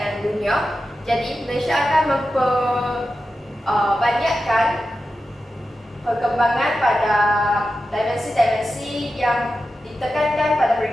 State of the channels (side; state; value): both; normal; correlation 0.91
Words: dunia, jadi Malaysia akan memperbanyakkan perkembangan pada dimensi-dimensi yang ditekankan pada